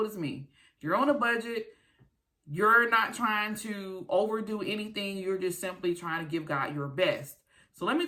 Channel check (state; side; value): identical; both; correlation 1.00